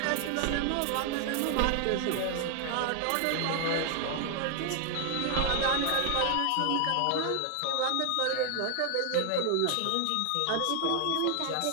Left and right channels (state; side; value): different; both; correlation 0.00